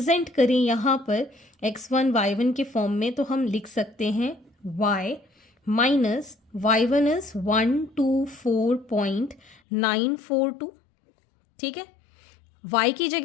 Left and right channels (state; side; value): drops out; right; at 9.6 s